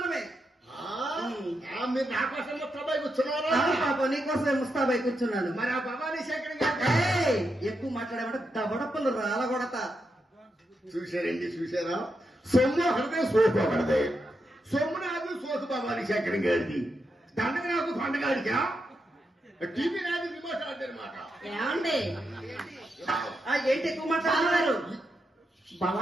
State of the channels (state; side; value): normal; both; correlation 0.84